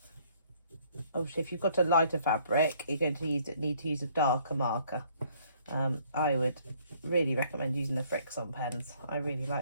Obviously, if you've got a lighter fabric, you're going to need to use a darker marker. I would really recommend using the Fix-On pens. I really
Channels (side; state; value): both; inverted; correlation -0.62